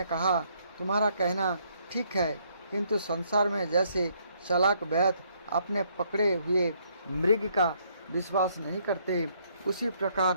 कहा, तुम्हारा कहना ठीक है, किंतु संसार में जैसे चालाक वैद्य अपने पकड़े हुए मृग का विश्वास नहीं करते, उसी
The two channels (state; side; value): inverted; both; correlation -0.69